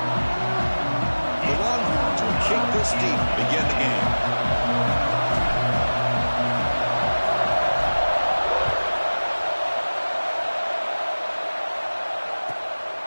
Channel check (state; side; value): inverted; both; correlation -1.00